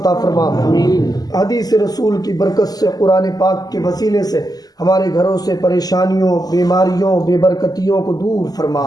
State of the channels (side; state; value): right; late; 0.18 ms